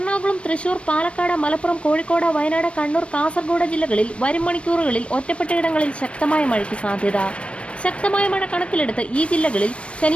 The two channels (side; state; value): right; late; 0.060 ms